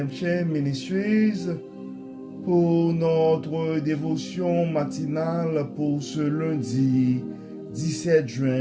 Ministries pour notre dévotion matinale pour ce lundi 17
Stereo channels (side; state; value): both; identical; correlation 1.00